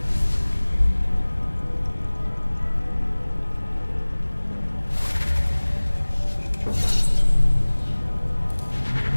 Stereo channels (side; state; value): both; inverted; correlation -1.00